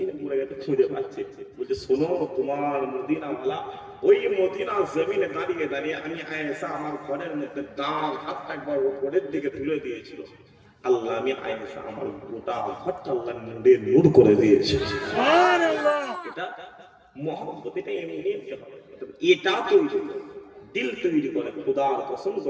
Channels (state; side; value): identical; both; correlation 1.00